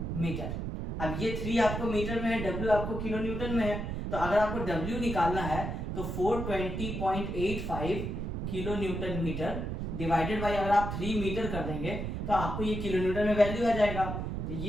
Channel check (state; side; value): noise; right; rumble, 4 dB below the sound